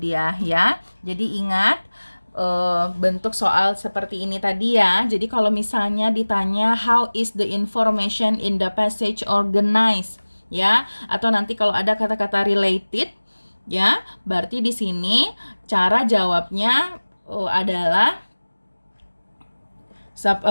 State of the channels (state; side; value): inverted; both; correlation -1.00